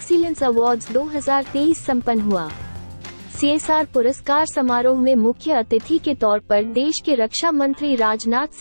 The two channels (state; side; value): inverted; both; correlation -1.00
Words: अवार्ड्स 2023 संपन्न हुआ। CSR पुरस्कार समारोह में मुख्य अतिथि के तौर पर देश के रक्षा मंत्री राजनाथ